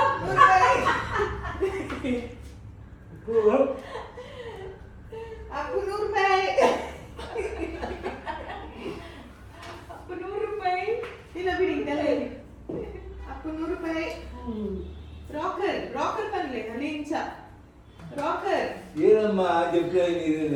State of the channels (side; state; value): both; identical; correlation 1.00